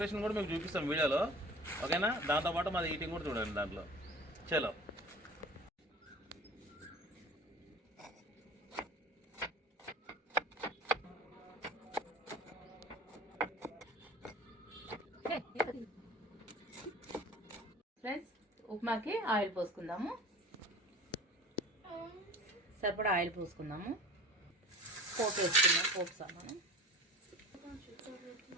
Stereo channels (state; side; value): normal; both; correlation 0.39